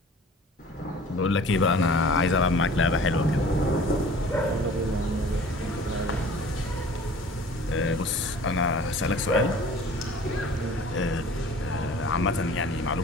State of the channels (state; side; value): normal; both; correlation 0.46